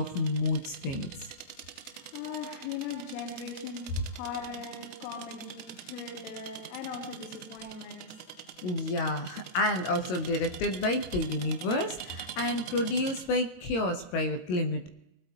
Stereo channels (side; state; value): right; late; 22 ms